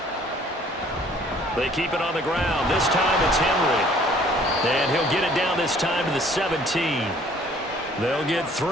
They keep it on the ground. This time it's Henry. And he'll get it down this time to the 17. They'll get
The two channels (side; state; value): both; normal; correlation 0.57